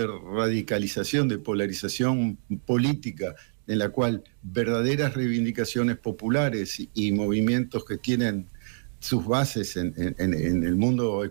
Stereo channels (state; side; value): silent; left; digital silence